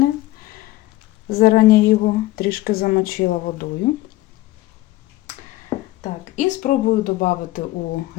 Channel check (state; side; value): quieter; right; 17.5 dB